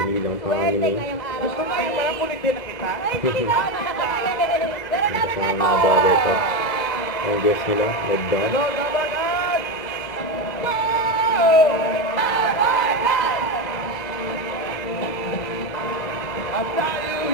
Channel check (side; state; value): right; late; 2.0 ms